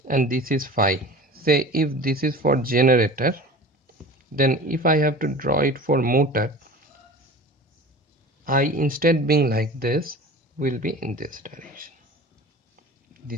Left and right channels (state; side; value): normal; both; correlation 0.38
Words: and this is phi. Say if this is for generator, then if I have to draw it for motor, I, instead being like this, will be in this direction.